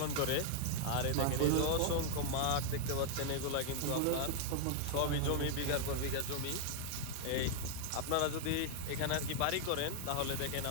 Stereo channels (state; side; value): different; both; correlation 0.00